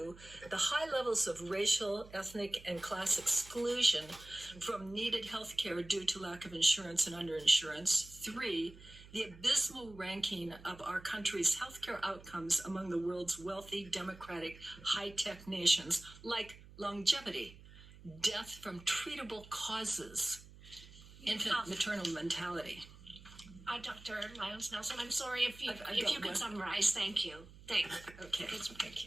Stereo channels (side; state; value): right; noise; hum, 19 dB below the sound